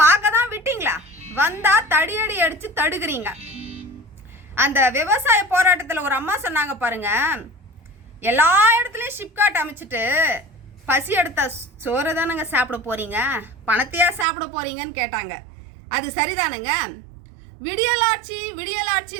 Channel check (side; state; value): left; drops out; at 14.2 s